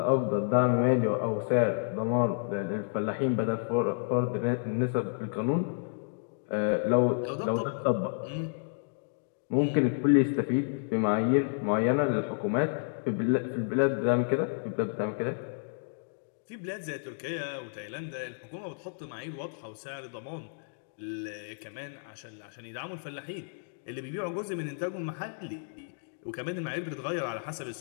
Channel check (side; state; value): right; silent; digital silence